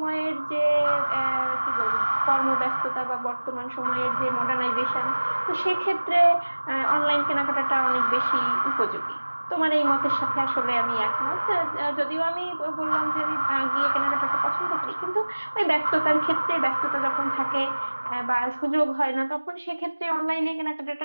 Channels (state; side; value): inverted; both; correlation -1.00